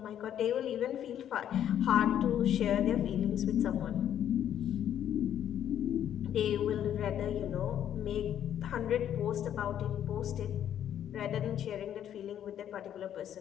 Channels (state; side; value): quieter; right; 10.2 dB